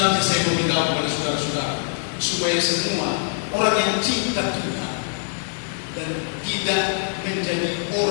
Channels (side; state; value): right; silent; 63 dB below the other